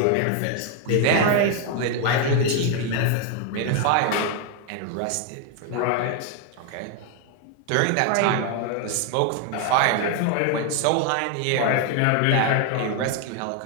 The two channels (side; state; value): both; different; correlation 0.01